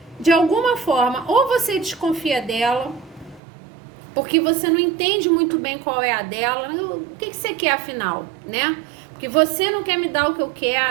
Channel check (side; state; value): left; drops out; at 3.4 s